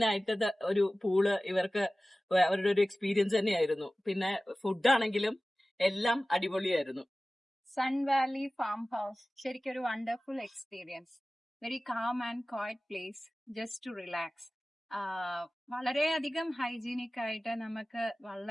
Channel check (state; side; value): normal; both; correlation 0.97